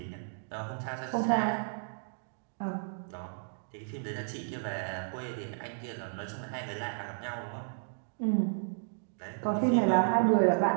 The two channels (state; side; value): silent; left; digital silence